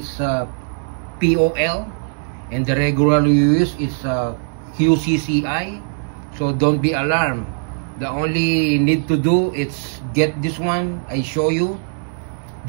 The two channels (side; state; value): left; silent; 66 dB below the other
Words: POL, and the regular you use is QCCI. So don't be alarmed. The only need to do is get this one. I show you.